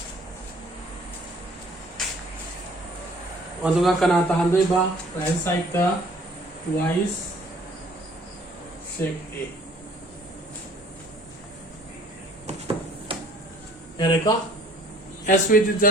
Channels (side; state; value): both; normal; correlation 0.56